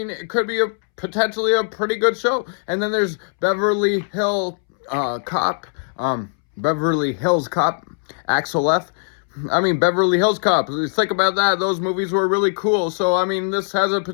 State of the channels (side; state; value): right; silent; 65 dB below the other